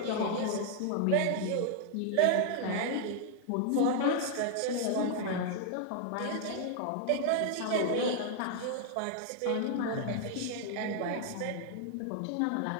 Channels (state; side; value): different; both; correlation 0.00